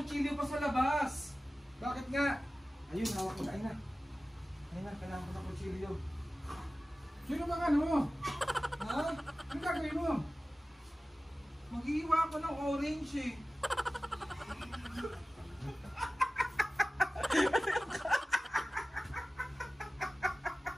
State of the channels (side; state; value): both; normal; correlation 0.96